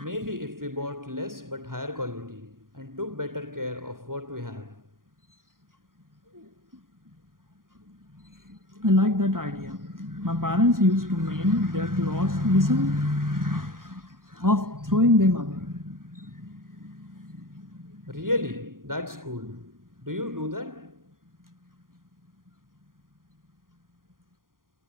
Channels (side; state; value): left; late; 0.91 ms